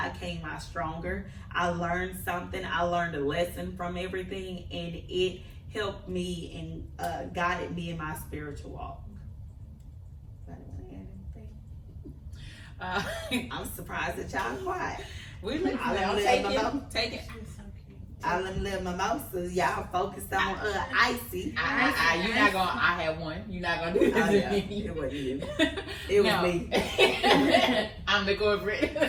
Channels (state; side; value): identical; both; correlation 1.00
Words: came out stronger. I learned something. I learned a lesson from everything, and it helped me and guided me in my spiritual walk. I'm surprised that y'all quiet. We live take it. I let them live mimosas. Y'all focused on icy. You're not gonna. I have one. You're not gonna do this to me. It wasn't you. It was me. I'm the